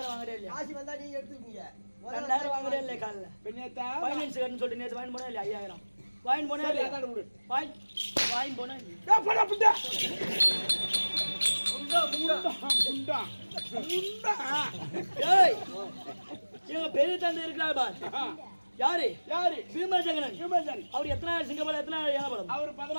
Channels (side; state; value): both; inverted; correlation -1.00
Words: வாங்குறே இல்லையா? காசு வந்தா நீங்க எடுத்துக்கீங்க. 2000 வாங்குறே இல்லையா? காலைல பின்னேத்தா ஃபைனான்ஸ் கட்டணும் சொல்லிட்டு நேற்று வாங்கி போனா இல்லையா? 5000 வாங்கி போனா இல்லையா? வாங்கி போனா பெரிய தந்தை இருக்கிறார் பார். யாரு பீமசங்கரன். அவர் எத்தனாயிரம் சிங்கப்படம் எத்தனாயிரம் ஏழப்படம்? அவர்